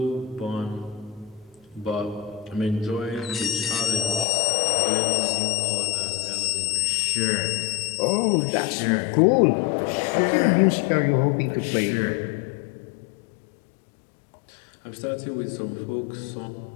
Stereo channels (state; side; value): drops out; right; at 4.2 s